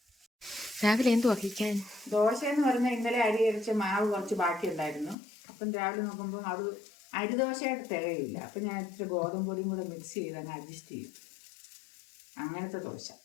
രാവിലെ എന്തു വഹിക്കാൻ? ദോശ എന്ന് പറഞ്ഞാൽ ഇന്നലെ അരി അരിച്ച മാവ് കുറച്ച് ബാക്കി ഉണ്ടായിരുന്നു. അപ്പം രാവിലെ നോക്കുമ്പോൾ അത് അരിദോശയായിട്ട് തികയില്ല. അപ്പം ഞാൻ ഇച്ചിരി ഗോതമ്പ് പൊടിയും കൂടെ മിക്സ് ചെയ്ത് അങ്ങ് അഡ്ജസ്റ്റ് ചെയ്യും. അങ്ങനത്തെ ദോശ.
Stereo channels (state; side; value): drops out; right; at 5.2 s